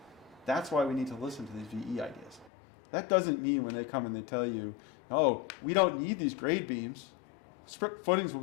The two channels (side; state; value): right; drops out; at 2.5 s